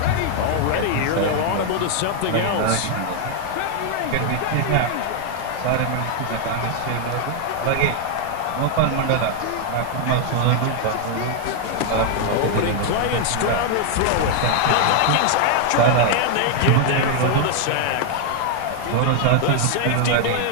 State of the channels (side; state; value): both; different; correlation 0.00